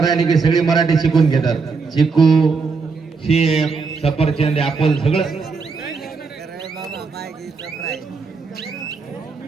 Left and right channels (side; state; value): left; quieter; 4.7 dB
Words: की सगळे मराठी शिकून घेतात. चिकू, शेप, सफरचंद, ऍपल सगळं.